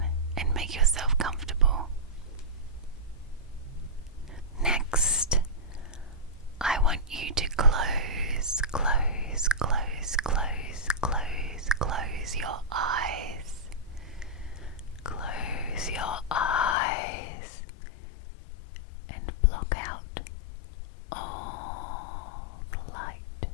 and make yourself comfortable. Next, I want you to close your eyes. Close your eyes and block out all the light.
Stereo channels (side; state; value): right; drops out; at 16.8 s